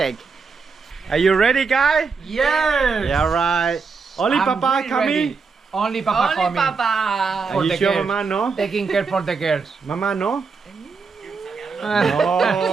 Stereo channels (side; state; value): left; quieter; 5.0 dB